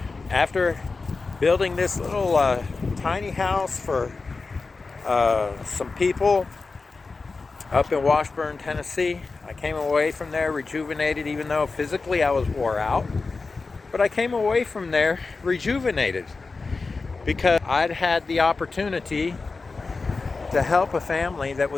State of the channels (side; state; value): right; quieter; 4.1 dB